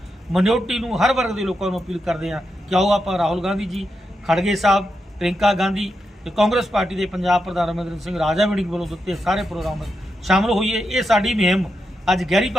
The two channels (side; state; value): both; normal; correlation 0.86